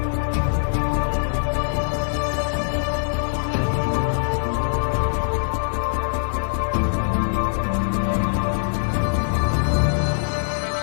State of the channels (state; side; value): silent; right; digital silence